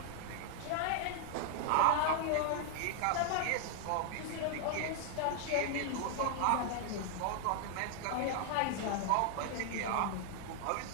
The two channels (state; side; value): different; both; correlation -0.01